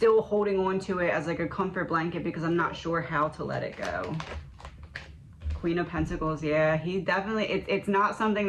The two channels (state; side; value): identical; both; correlation 1.00